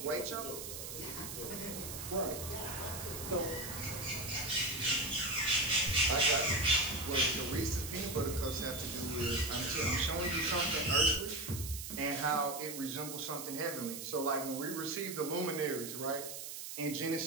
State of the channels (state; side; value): noise; right; hiss, 8 dB below the sound